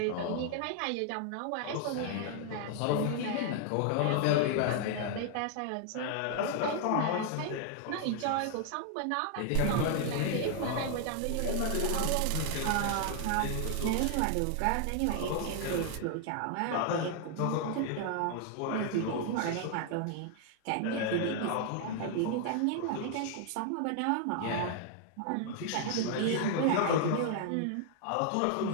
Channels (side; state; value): both; different; correlation 0.00